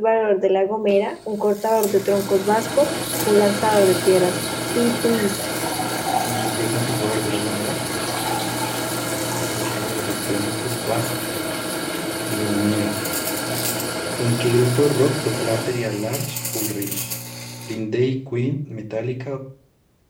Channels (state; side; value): identical; both; correlation 1.00